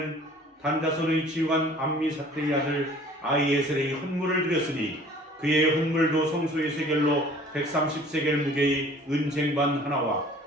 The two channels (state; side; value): normal; both; correlation 0.50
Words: 단 자손의 지휘관 암미사대의 아들 아히에셀의 헌물을 드렸으니 그의 헌물도 성소의 세겔로 130세겔 무게의 은쟁반 하나와